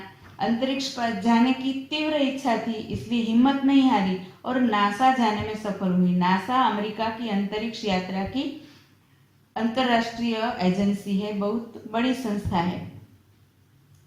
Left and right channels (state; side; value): identical; both; correlation 1.00